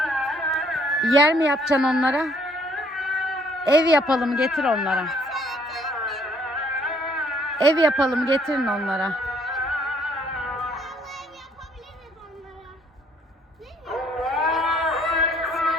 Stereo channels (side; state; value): both; normal; correlation 0.64